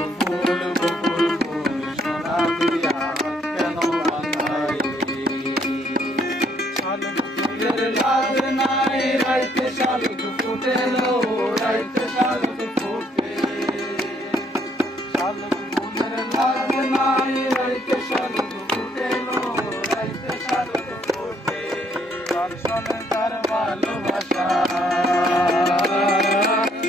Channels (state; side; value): normal; both; correlation 0.68